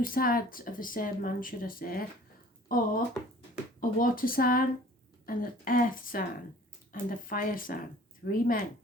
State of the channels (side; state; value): both; normal; correlation 0.50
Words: sides of the same man, should I say, or a water sign and an earth sign and a fire sign. 3 men.